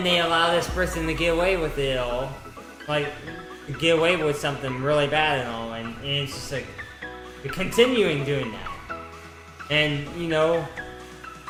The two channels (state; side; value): identical; both; correlation 1.00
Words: they allow this person to get away with it all. Like, get away with something really bad and all, and it's just like, you're continuing doing that. And, you know,